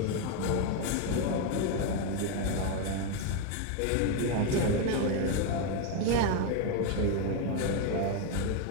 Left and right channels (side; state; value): both; different; correlation 0.02